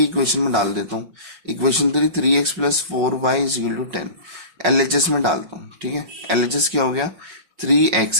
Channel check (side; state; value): left; late; 5.4 ms